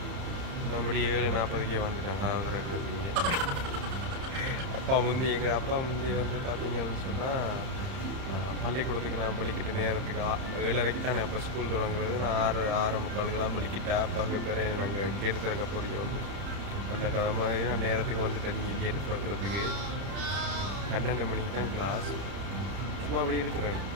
நம்மடி 7:40க்கே வந்துட்டேன் கதவு திறக்கிறதுக்கு. எங்கள் அப்பா முந்தி வந்து பார்த்தீங்கன்னு சொன்னால் பள்ளிக்கூடத்துக்கு நான் வெளிக்கிட்ட நேரத்துக்கு 7:30க்கு தானே அப்போ ஸ்கூல் தொடங்குறது. நான் 6:45 வெளிக்கிட்டா அப்பாவுக்கு பேரை நாங்கள் கேட்டு திறக்க போறீங்க வந்து அந்த கதை மாதிரி நான் நேரத்துக்கு வந்துட்டேன். நீங்கள் கேட்டு திறக்கிறதுக்கு 12 மணிக்கு தான் கிளாஸ். சும்மா அப்படி இருக்கிறேன்,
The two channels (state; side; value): late; left; 30 ms